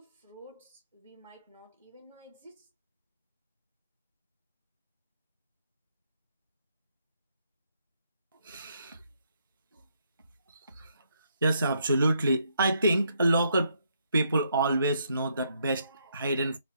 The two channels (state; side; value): inverted; both; correlation -0.74